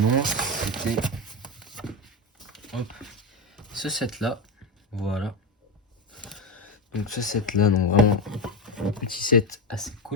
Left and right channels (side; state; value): both; normal; correlation 0.15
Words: c'était ce set là. Voilà. Donc ce set là, donc vraiment un petit set assez